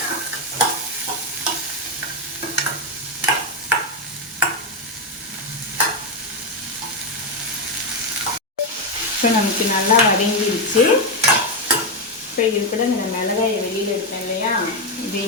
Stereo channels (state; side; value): normal; both; correlation 0.06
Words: இப்போ நமக்கு நல்லா வதங்கிடுச்சு. இப்போ இது கூட இந்த மிளகாயை வெளியில் எடுத்தேன் இல்லையா,